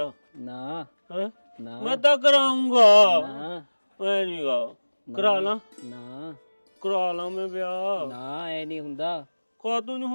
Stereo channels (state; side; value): inverted; both; correlation -1.00